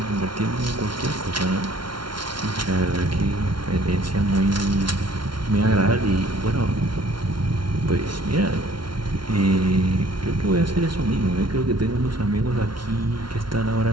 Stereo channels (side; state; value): left; late; 0.73 ms